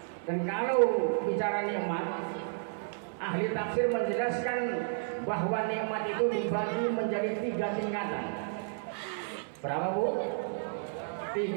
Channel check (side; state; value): left; silent; 56 dB below the other